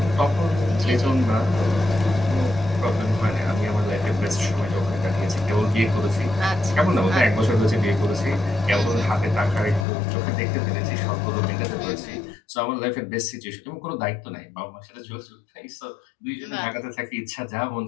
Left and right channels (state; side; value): drops out; right; at 9.9 s